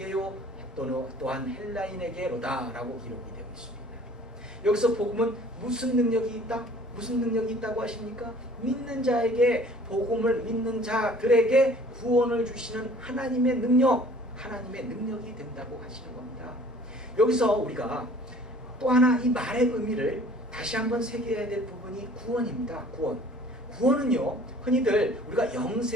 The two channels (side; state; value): both; normal; correlation 0.51